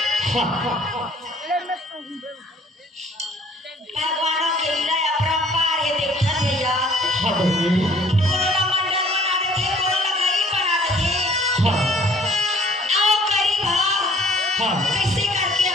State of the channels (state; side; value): normal; both; correlation 0.56